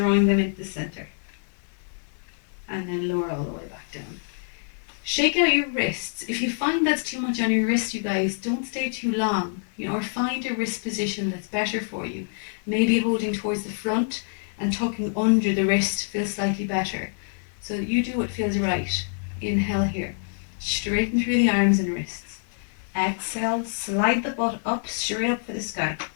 them into the center. And then lower all the way back down. Shake out your wrists. If you find that's too much on your wrist, you guys, don't stay too long. Or find a wrist position that's better for you. Maybe holding towards the front and tucking under the wrist feels slightly better. So you do what feels right. Inhale here. Straighten through the arms and wrists. Exhale, slide the butt up, straight up for the sky.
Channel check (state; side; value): silent; right; 61 dB below the other